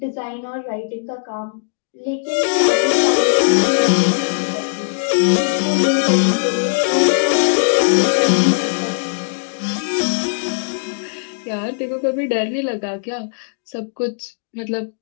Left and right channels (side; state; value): right; silent; digital silence